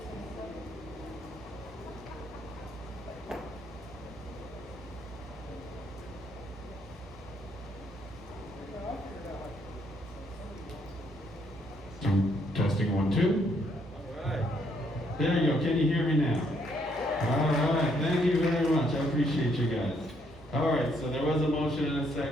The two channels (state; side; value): normal; both; correlation 0.71